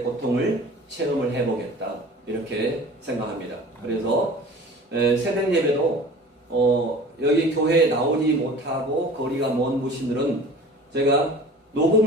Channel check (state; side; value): normal; both; correlation 0.42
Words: 고통을 체험을 해보겠다, 이렇게 생각합니다. 그래서 새벽 예배도 여기 교회에 나오지 못하고 거리가 먼 분들은 제가